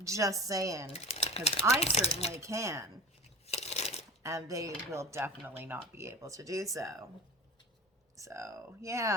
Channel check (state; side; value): normal; both; correlation 0.34